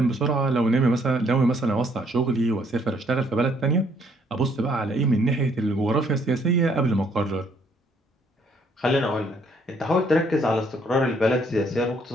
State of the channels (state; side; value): normal; both; correlation 0.66